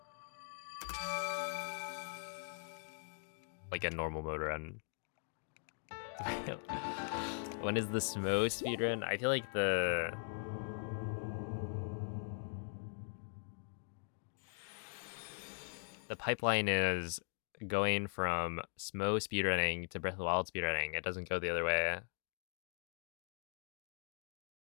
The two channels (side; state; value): right; silent; digital silence